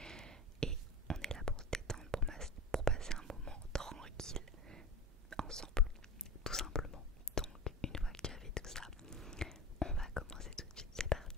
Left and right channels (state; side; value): normal; both; correlation 0.30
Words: Et on est là pour se détendre, pour passer un moment tranquille ensemble, tout simplement. Donc une fois que tu as fait tout ça, on va commencer tout de suite, c'est parti.